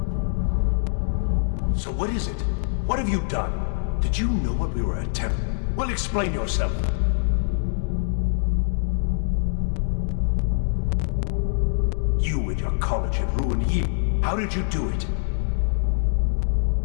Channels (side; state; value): right; silent; digital silence